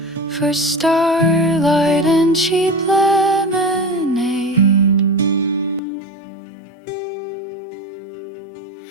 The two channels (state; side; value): drops out; right; at 5.8 s